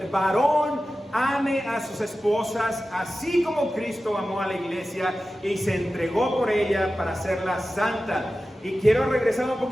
varón ame a sus esposas, así como Cristo amó a la iglesia y se entregó por ella para hacerla santa. Y quiero regresar un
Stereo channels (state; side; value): normal; both; correlation 0.94